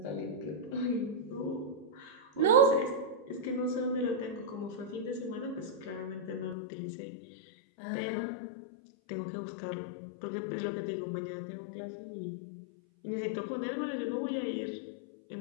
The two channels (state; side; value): drops out; right; at 6.6 s